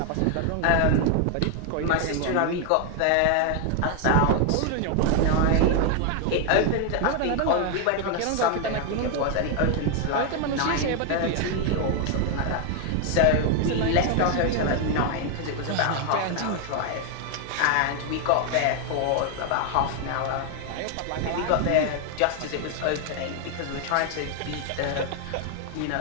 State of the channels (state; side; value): different; both; correlation 0.00